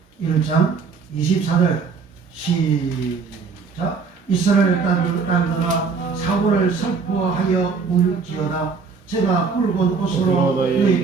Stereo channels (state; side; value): quieter; left; 5.2 dB